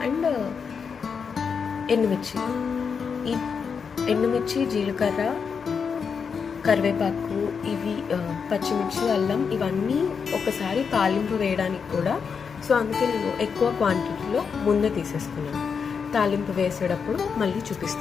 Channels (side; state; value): right; quieter; 6.1 dB